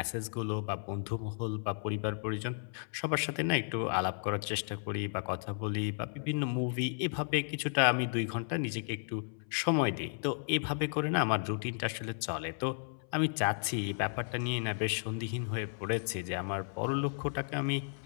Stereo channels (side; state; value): right; silent; 55 dB below the other